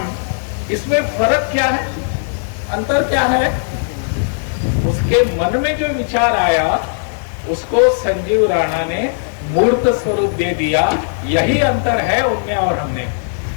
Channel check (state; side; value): silent; right; 63 dB below the other